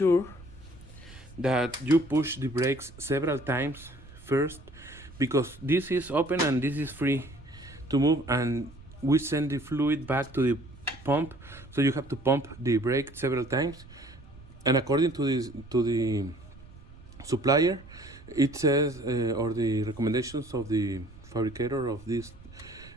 that you push the brakes several times first, because this is open and this is free to move, and we send the fluid back to the pump, so you have to pump the brake several times. And according to the supplier, it says, or the recommendations of the fabricator of these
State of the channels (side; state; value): right; noise; rumble, 20 dB below the sound